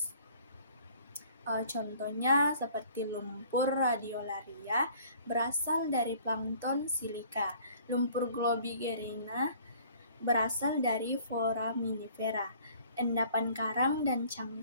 Contohnya seperti lumpur radiolaria berasal dari plankton silika. Lumpur globigerina berasal dari foraminifera. Endapan karang dan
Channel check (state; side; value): inverted; both; correlation -0.54